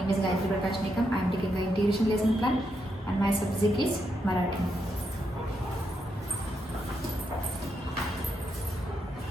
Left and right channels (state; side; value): normal; both; correlation 0.81